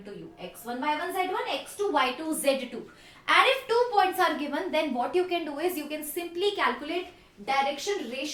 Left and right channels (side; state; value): both; identical; correlation 1.00